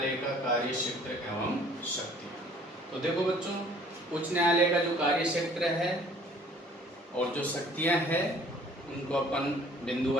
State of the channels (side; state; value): both; normal; correlation 0.55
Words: का कार्य क्षेत्र एवं शक्ति। तो देखो बच्चों, उच्च न्यायालय का जो कार्य क्षेत्र है और जो शक्तियां हैं उनको अपन बिंदु